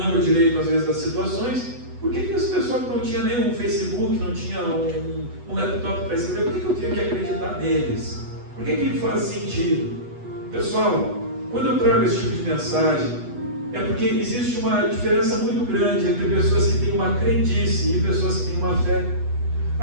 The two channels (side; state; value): left; late; 8.1 ms